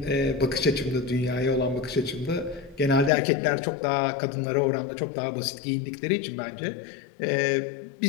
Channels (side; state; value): right; drops out; at 3.1 s